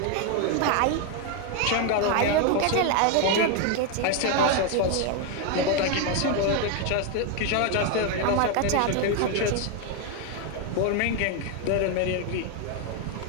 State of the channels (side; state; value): both; different; correlation 0.01